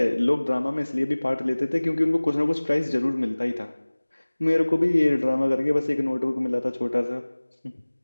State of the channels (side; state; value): both; inverted; correlation -1.00